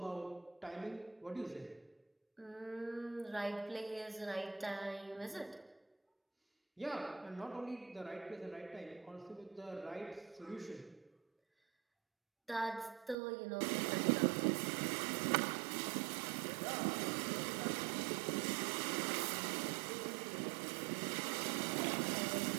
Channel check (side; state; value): left; drops out; at 13.2 s